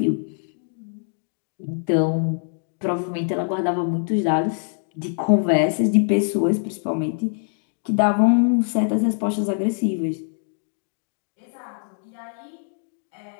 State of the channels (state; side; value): silent; right; digital silence